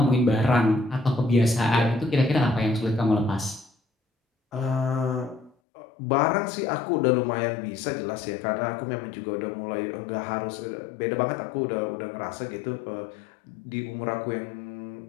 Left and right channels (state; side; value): drops out; right; at 5.5 s